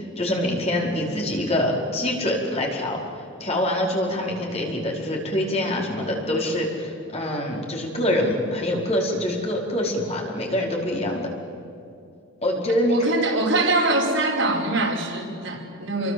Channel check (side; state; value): both; normal; correlation 0.28